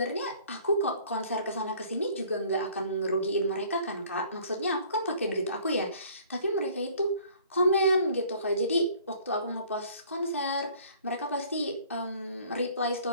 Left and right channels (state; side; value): inverted; both; correlation -0.54